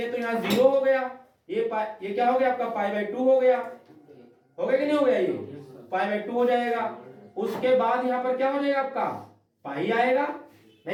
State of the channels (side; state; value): both; identical; correlation 1.00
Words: तो यहाँ 0 हो गया, ये क्या हो गया आपका π/2 हो गया कि नहीं हो गया, ये π/2 हो जाएगा। उसके बाद यहाँ पर क्या हो जाएगा आपका, पाई आएगा,